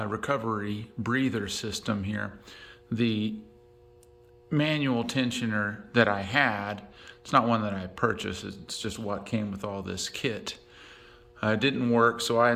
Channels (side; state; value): both; identical; correlation 1.00